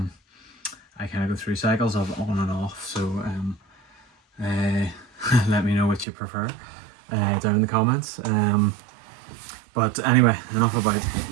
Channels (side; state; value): left; drops out; at 6.1 s